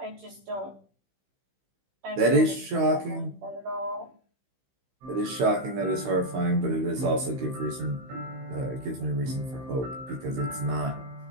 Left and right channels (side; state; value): left; late; 15 ms